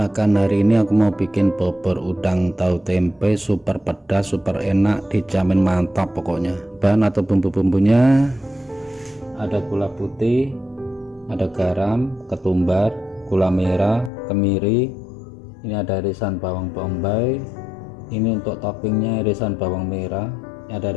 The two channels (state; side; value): drops out; right; at 14.1 s